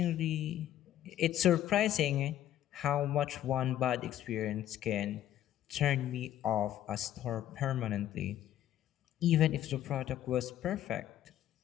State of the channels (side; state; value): right; quieter; 12.1 dB